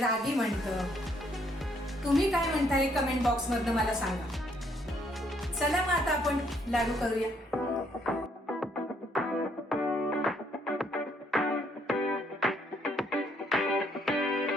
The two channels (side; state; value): both; normal; correlation 0.69